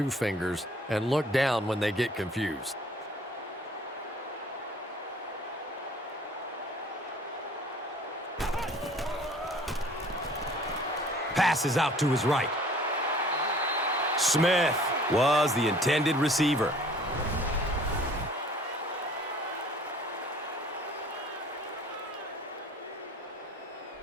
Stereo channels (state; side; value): normal; both; correlation 0.52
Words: fingers and look down when they get confused. Passes out to his right. Smith was the intended receiver.